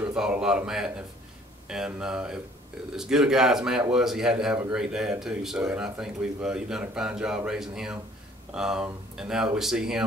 thought a lot of Matt, and if as good a guy as Matt was, he had to have a great dad too. So, and I think you've done a fine job raising him. And now that we see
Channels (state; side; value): normal; both; correlation 0.57